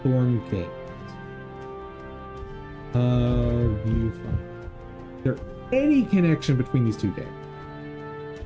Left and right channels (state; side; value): identical; both; correlation 1.00